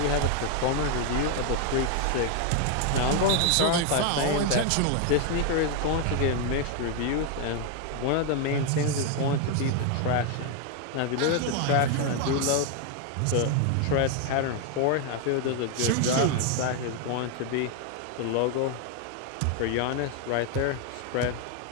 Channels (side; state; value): both; different; correlation 0.00